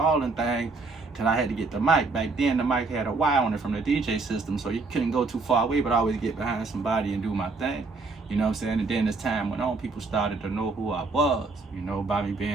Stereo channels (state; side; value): quieter; left; 3.9 dB